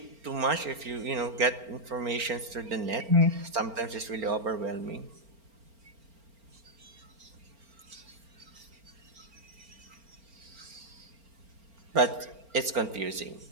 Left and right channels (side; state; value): left; late; 4.4 ms